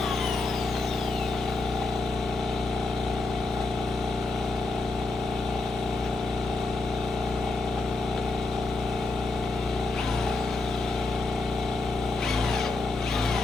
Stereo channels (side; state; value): right; quieter; 3.4 dB